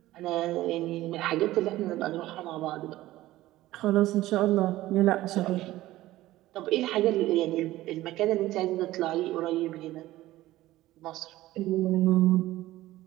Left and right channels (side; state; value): left; quieter; 16.2 dB